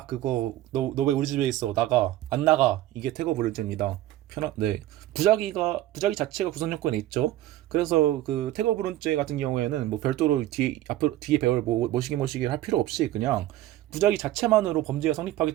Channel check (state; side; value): quieter; left; 14.3 dB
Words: 그거 너 왜 우리 집에 있어? 나가. 안 나가. 이게 태거 불응죄입니다. 네. 부작위 자체가 구성 요건에 있죠. 그래서 그 태거 불응죄 같은 경우에는 별도로 뒤에 배울 모시기를 할 필요 없이 그냥 부작위 자체만으로 범죄가